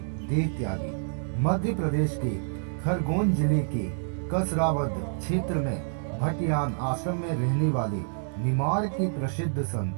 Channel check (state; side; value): silent; left; digital silence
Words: देह त्यागी। मध्य प्रदेश के खरगोन जिले के कसरावद क्षेत्र में भटियान आश्रम में रहने वाले निमाड़ के प्रसिद्ध